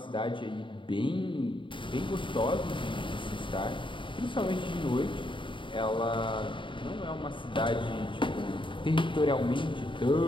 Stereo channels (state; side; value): late; right; 0.24 ms